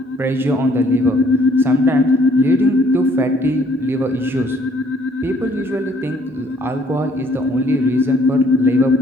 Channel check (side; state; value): both; normal; correlation 0.63